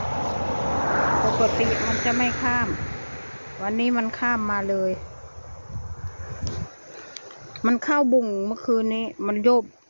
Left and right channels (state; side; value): inverted; both; correlation -1.00